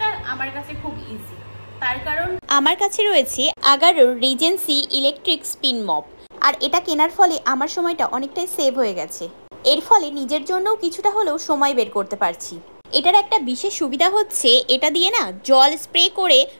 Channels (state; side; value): inverted; both; correlation -1.00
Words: আমার কাছে খুব ইজি, তার কারণ আমার কাছে রয়েছে আগারোর রিজেন্সি ইলেকট্রিক স্পিন মপ। আর এটা কেনার ফলে আমার সময়টা অনেকটাই সেভ হয়ে গেছে। এর ফলে নিজের জন্যও কিছুটা হলেও সময় বের করতে পারছি। এটার একটা বিশেষ সুবিধা হচ্ছে এটা দিয়ে না জল স্প্রে করে